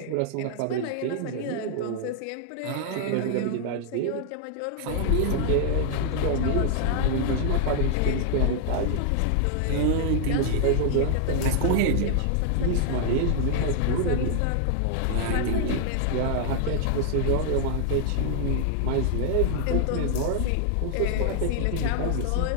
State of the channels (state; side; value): different; both; correlation 0.00